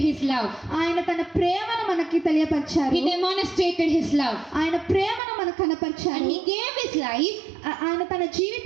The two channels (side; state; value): left; drops out; at 5.2 s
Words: His love. ఆయన తన ప్రేమను మనకి తెలియపరిచారు. He demonstrated His love. ఆయన ప్రేమను మనకు కనపరిచారు. And He gave His life, ఆయన తన